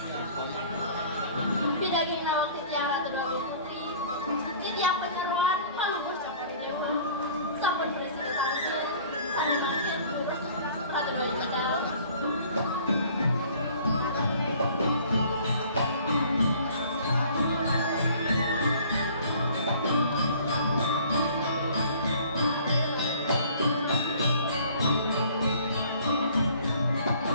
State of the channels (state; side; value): inverted; both; correlation -0.52